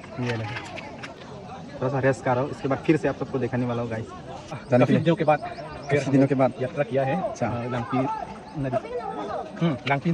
ये नहीं, थोड़ा सा रेस्ट कर रहा हूँ, इसके बाद फिर से आप सबको दिखाने वाला हूँ गाइस। काफी दिनों के बाद यात्रा किया है। अच्छा, लांगपी नदी, लांगपी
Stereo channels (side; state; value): both; identical; correlation 1.00